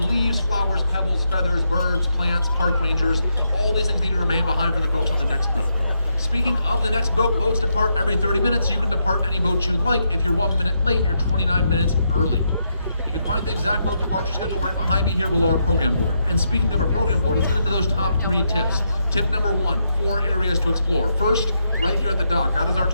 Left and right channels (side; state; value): both; inverted; correlation -0.80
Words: leaves, flowers, pebbles, feathers, birds, plants, park rangers. All these things need to remain behind for the folks on the next boat. Speaking of the next boat, boats depart every 30 minutes. You can depart any boat you'd like. If you're 1 minute late, you're 29 minutes early. You can find the exact boat departure schedule right behind me here below our program board. And speaking of our program board, let's get into those top 3 tips. Tip number 1, 4 areas to explore. First, right here at the dock, that is our